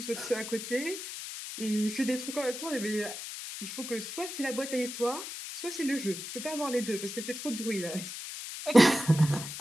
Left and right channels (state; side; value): noise; left; hiss, 8 dB below the sound